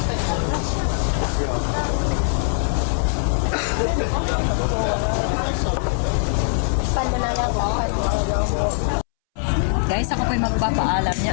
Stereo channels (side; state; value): right; silent; 65 dB below the other